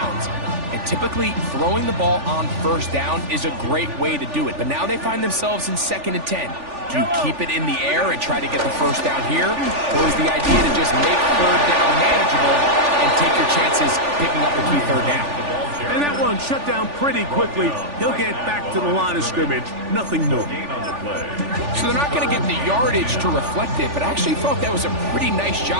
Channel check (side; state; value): left; late; 3.4 ms